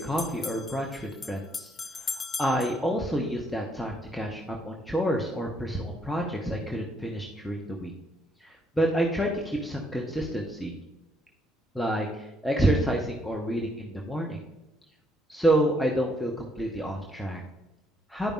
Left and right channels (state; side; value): normal; both; correlation 0.71